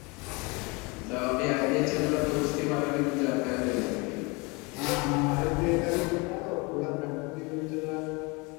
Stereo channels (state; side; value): quieter; right; 27.8 dB